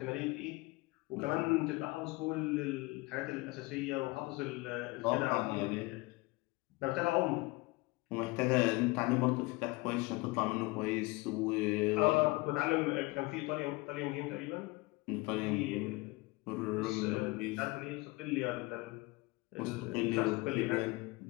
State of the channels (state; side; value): quieter; right; 23.5 dB